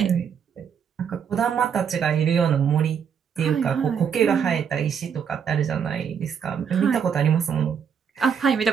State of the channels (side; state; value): left; quieter; 7.3 dB